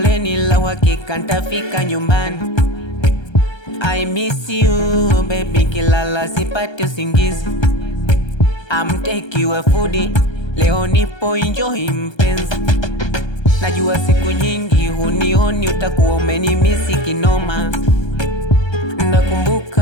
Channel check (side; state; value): right; late; 1.3 ms